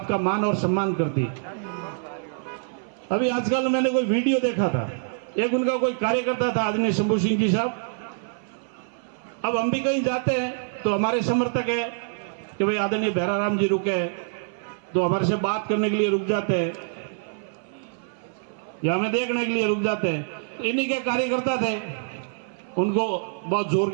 मान और सम्मान करती। अभी आजकल मैंने कोई वीडियो देखा था, एक उनका कोई कार्यकर्ता था आदरणीय शंभू सिंह जी साहब। अब हम भी कहीं जाते हैं तो हमारे समर्थक है कि भाई आदरणीय भैराराम जी रुके तो हमारे से बात करने के लिए रुक जाते हैं या हमें देखने के लिए रुक जाते हैं। इन्हीं के कार्यकर्ता थे, उनको बहुत जोर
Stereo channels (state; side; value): silent; left; 61 dB below the other